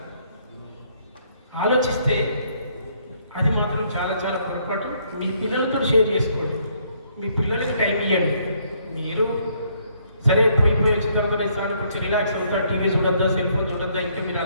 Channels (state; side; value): inverted; both; correlation -0.68